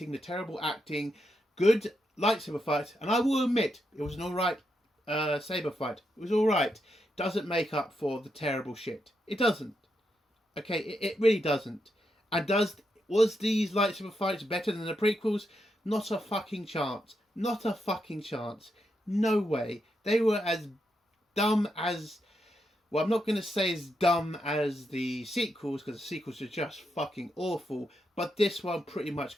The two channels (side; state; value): both; normal; correlation 0.83